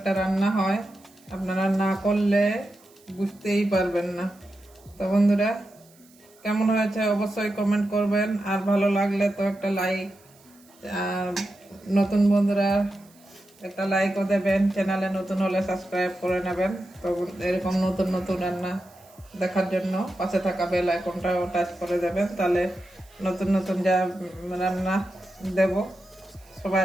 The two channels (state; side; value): noise; right; hiss, 29 dB below the sound